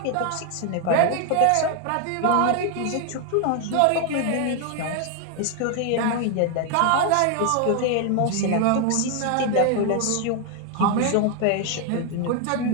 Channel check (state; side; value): different; both; correlation 0.00